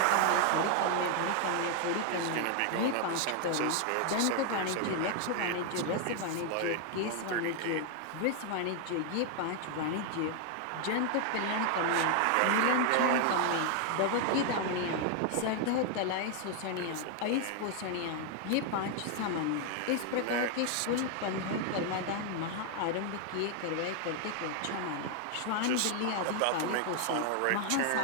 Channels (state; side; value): different; both; correlation 0.00